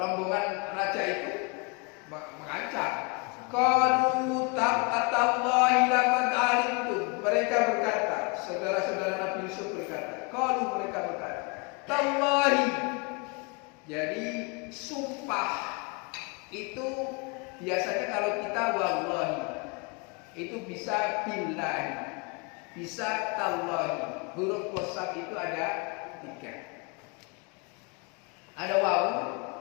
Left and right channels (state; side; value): quieter; right; 31.2 dB